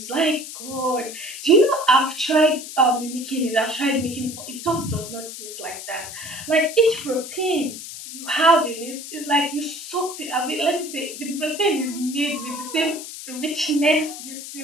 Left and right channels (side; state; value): left; noise; hiss, 11 dB below the sound